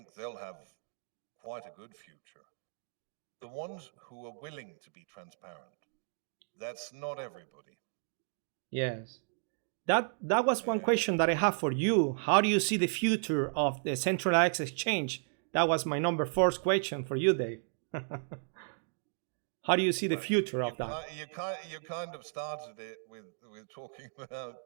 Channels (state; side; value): silent; left; digital silence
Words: they'll have quite a good future. The ones who are willing to be transparent, that's not everybody. Yes. That was one question that I have for you. How do you see the future of the centralized exchange? That was my number fourth question for you, Dave. How do you see the future of that? You kind of started it with talking about